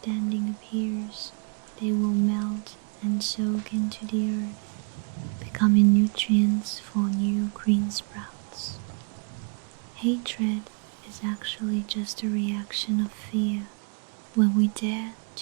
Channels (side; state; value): left; quieter; 39.3 dB